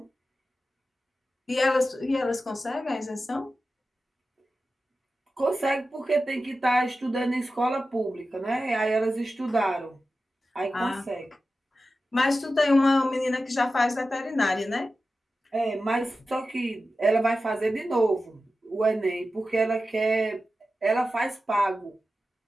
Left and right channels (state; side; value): normal; both; correlation 0.93